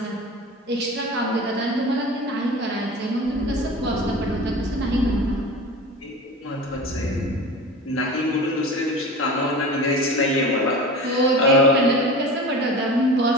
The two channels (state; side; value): normal; both; correlation 0.33